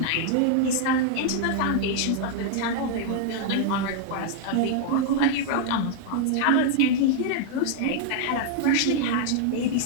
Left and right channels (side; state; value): both; different; correlation 0.00